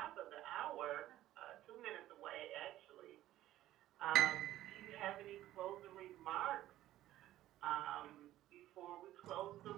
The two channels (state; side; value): quieter; left; 14.2 dB